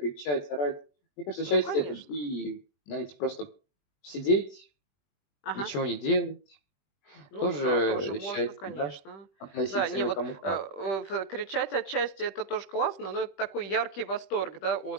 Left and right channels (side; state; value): right; late; 21 ms